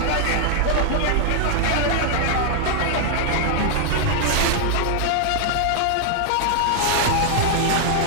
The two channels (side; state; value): both; different; correlation 0.00